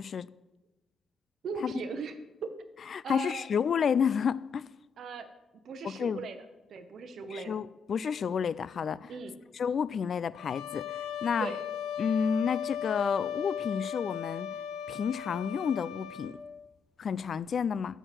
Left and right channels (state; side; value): quieter; right; 6.0 dB